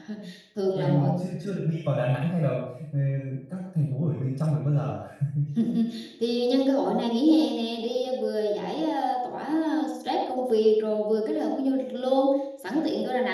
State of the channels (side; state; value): both; identical; correlation 1.00